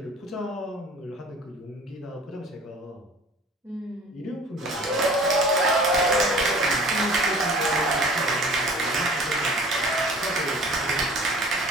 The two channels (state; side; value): normal; both; correlation 0.45